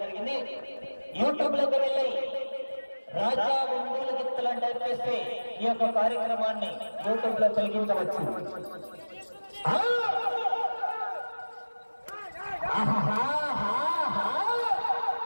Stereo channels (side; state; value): both; inverted; correlation -1.00